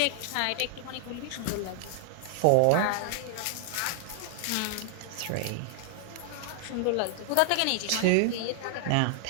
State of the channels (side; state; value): both; different; correlation 0.00